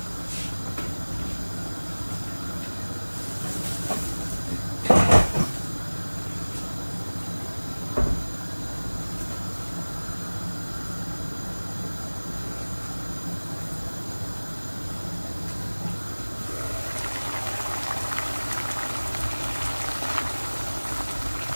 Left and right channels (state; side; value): inverted; both; correlation -1.00